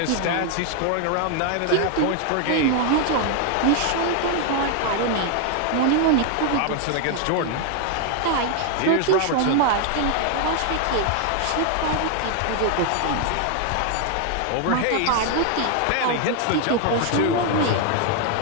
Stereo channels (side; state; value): both; different; correlation 0.00